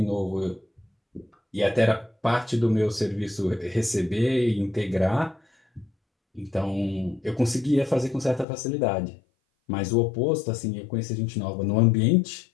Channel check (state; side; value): drops out; right; at 8.5 s